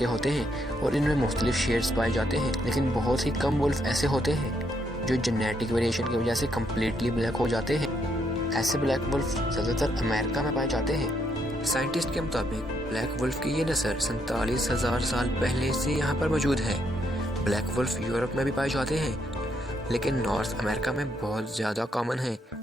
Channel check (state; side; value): normal; both; correlation 0.75